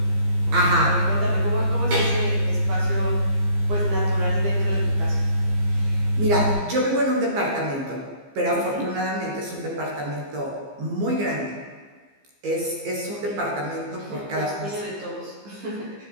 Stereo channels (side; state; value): left; late; 15 ms